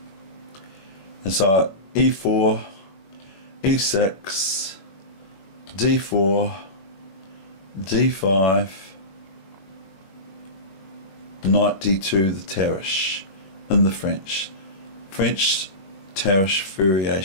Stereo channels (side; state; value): right; late; 21 ms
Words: And so e4, e6, d4, d5, knight d2, the Tarrasch in the French Tarrasch